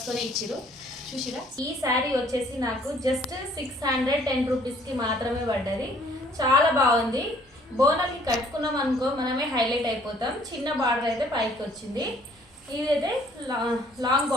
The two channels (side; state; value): both; normal; correlation 0.59